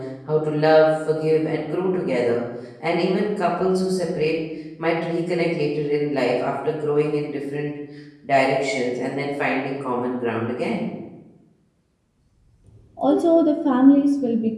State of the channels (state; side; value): identical; both; correlation 1.00